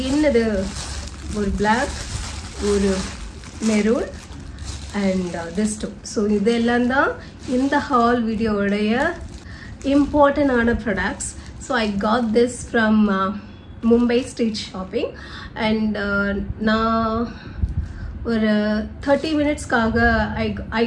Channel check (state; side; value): identical; both; correlation 1.00